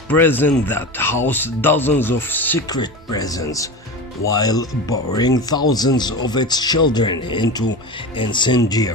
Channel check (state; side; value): normal; both; correlation 0.27